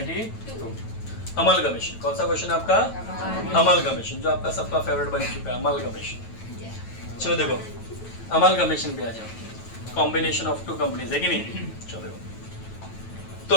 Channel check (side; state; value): right; late; 9.1 ms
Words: Amalgamation. कौन सा question आपका? Amalgamation, जो आपका सबका favourite बन चुका है, amalgamation. चलो देखो, अमलगमेशन पे आ जाओ. कॉम्बिनेशन ऑफ टू कंपनीज है कि नहीं? चलो देखो.